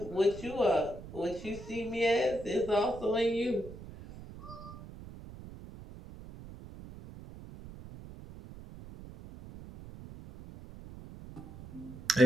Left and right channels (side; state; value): right; noise; rumble, 14 dB below the sound